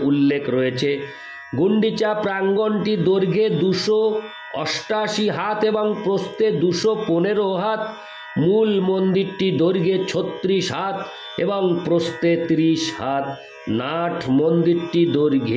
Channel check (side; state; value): both; identical; correlation 1.00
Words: উল্লেখ রয়েছে। গুন্ডিচা প্রাঙ্গণটি দৈর্ঘ্যে 288 হাত এবং প্রস্থে 215 হাত। মূল মন্দিরটি দৈর্ঘ্যে 36 হাত এবং প্রস্থে 30 হাত। নাট মন্দিরটি